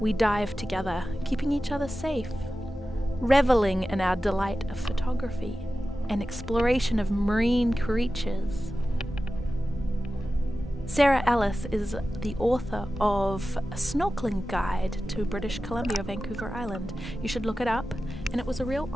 dive together, keeping each other safe, reveling in our delight of photography and exploration of marine creatures. Sarah Ellis is the author of a snorkeling guide to British Columbia, Vancouver Island. You should look it up, and it was a real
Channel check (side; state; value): both; normal; correlation 0.94